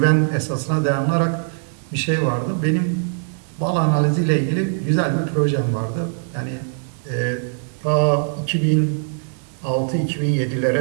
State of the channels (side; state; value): left; silent; digital silence